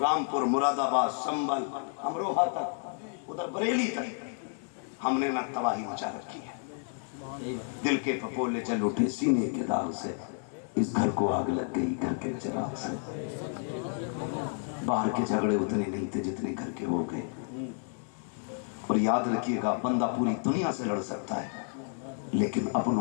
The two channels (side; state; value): right; silent; 55 dB below the other